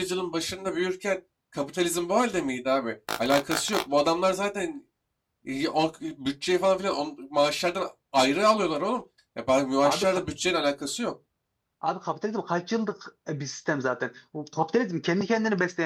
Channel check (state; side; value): identical; both; correlation 1.00